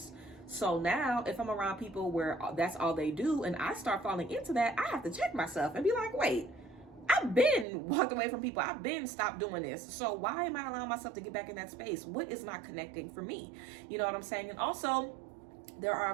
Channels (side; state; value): left; drops out; at 7.7 s